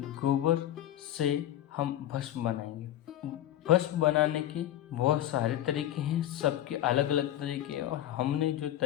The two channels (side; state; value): right; quieter; 12.5 dB